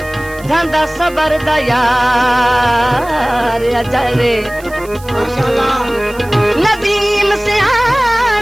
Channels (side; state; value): right; noise; hiss, 21 dB below the sound